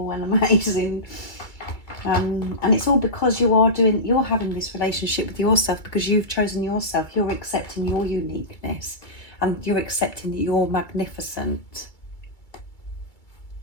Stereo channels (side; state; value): right; late; 2.3 ms